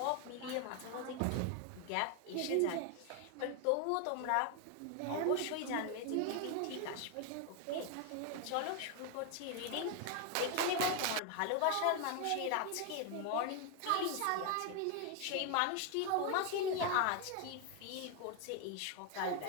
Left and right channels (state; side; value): different; both; correlation 0.01